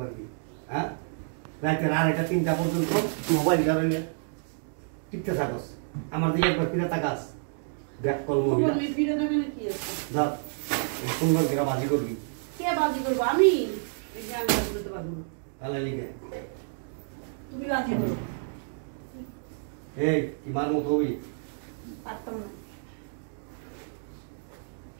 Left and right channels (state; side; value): silent; left; digital silence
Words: পারবি? হ্যাঁ, রাইতে আড়াইটা 3টা পর্যন্ত মোবাইল ধরে টিপতে থাকস, আমার দিকে একবার ফিরে তাকাস। ব্যাক কল মহিলা তুমি ফিরে দেবে না কি আছে যা সুন্দর করে বাজি করবি। কে বাজি করবো আমি এই যে আমি বাজি করতে পারবো না তাহলে লিখে তুমি বাজি করো এই কি মার মতো হবি? পারতাম না